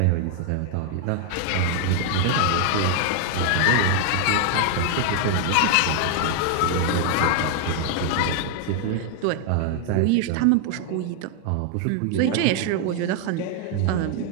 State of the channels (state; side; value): different; both; correlation 0.00